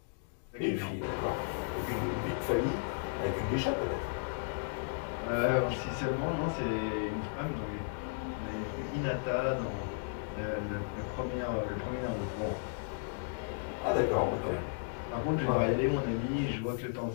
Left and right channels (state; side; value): silent; right; digital silence